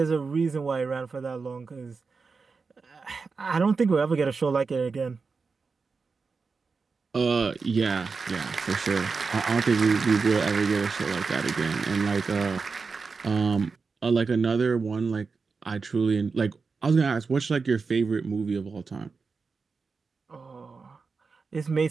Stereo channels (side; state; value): left; quieter; 4.7 dB